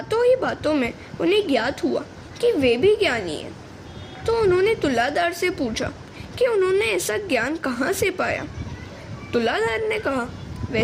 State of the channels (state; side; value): identical; both; correlation 1.00